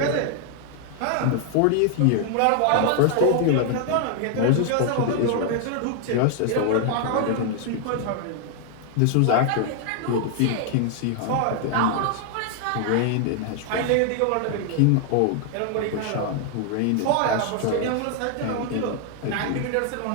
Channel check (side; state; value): both; different; correlation 0.00